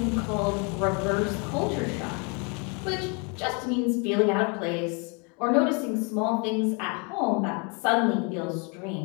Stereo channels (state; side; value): quieter; right; 33.5 dB